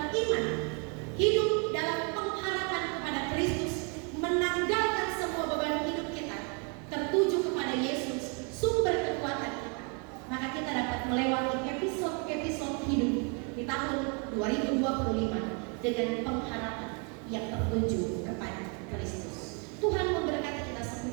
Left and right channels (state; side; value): quieter; left; 35.0 dB